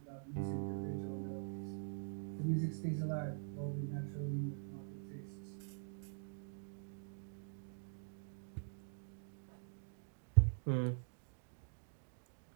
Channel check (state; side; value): silent; left; digital silence